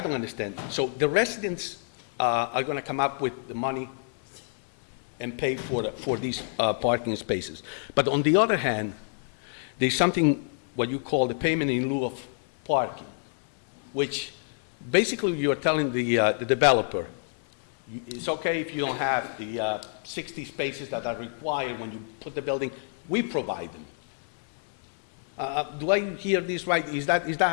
don't understand, so the residents are going to come up with the money and pay for these parking spaces. But on the other hand, there's something what you call the payment in lieu of parking, which basically you're telling the developer, it's okay if you don't have the 60 spaces that are required when you put the building, we provide them. Do I hear this right? Is that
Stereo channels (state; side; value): silent; right; 60 dB below the other